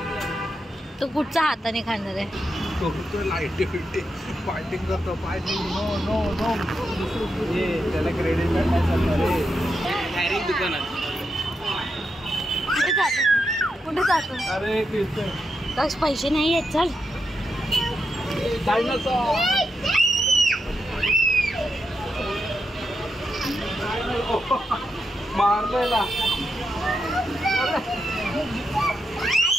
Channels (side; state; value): both; normal; correlation 0.85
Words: तो कुठच्या हाताने खाणार आहे तो लाईटी फिटी फायटिंग करतो नो नो नो त्याला क्रेडिट नाही चालणार डायरेक्ट दुकानात कुठे जातो अरे दक्ष पैसे नाही आहेत चल मारलेला